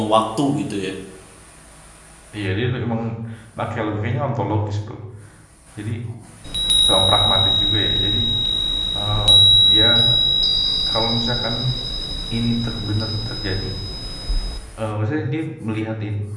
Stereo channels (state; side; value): identical; both; correlation 1.00